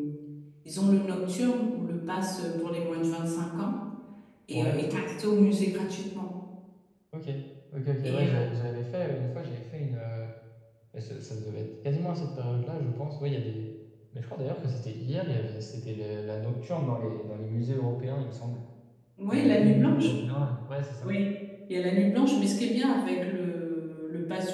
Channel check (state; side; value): identical; both; correlation 1.00